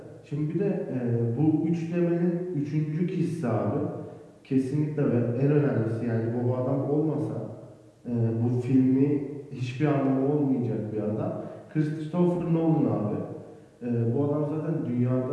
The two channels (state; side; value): identical; both; correlation 1.00